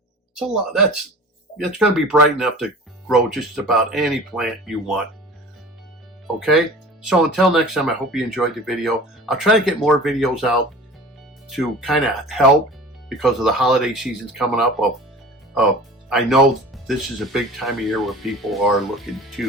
It's a lot. It's going to be bright enough to grow just about any plant you want. Okay, so until next time, I hope you enjoyed the video. I'll try to get more videos out to kind of help, because of the holiday seasons coming up. I know this is a big time of year where people are looking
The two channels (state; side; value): normal; both; correlation 0.39